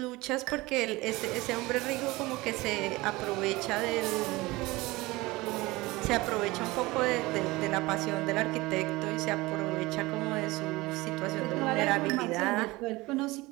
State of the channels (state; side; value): quieter; left; 21.3 dB